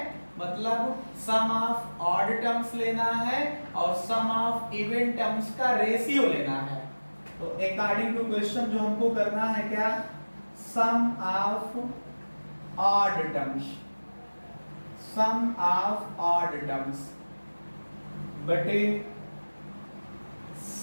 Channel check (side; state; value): both; inverted; correlation -1.00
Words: मतलब सम ऑफ ऑड टर्म्स लेना है और सम ऑफ इवन टर्म्स का रेशियो लेना है। तो अकॉर्डिंग टू क्वेश्चन जो हमको करना है क्या, sum of odd terms, sum of odd terms बटे